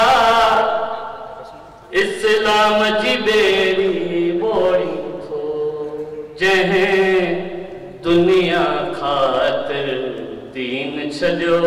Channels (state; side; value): identical; both; correlation 1.00